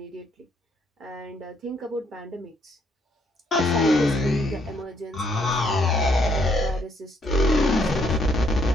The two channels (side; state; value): both; normal; correlation 0.70